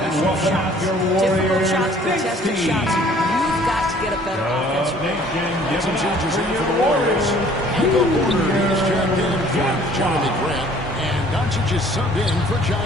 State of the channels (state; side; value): normal; both; correlation 0.55